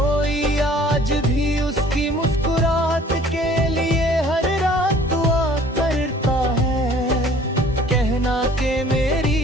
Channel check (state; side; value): normal; both; correlation 0.53